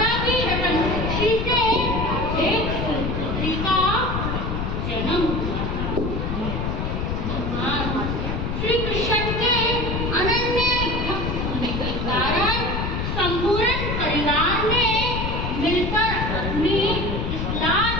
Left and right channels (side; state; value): left; noise; rumble, 2 dB below the sound